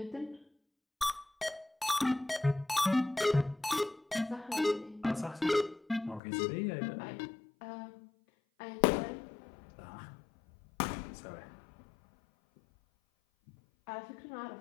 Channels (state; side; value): drops out; right; at 6.2 s